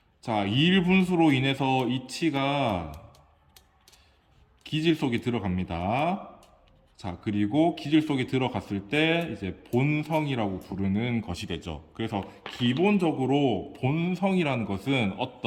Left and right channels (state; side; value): identical; both; correlation 1.00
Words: 자, 이일분수로 인해서 이치가 기질 속에 들어갑니다. 자, 그리고 기질 속에 들어갔을 때 이제 본성이라고 부르는 것이 되죠. 그래서 기본적으로 본성이라는 것은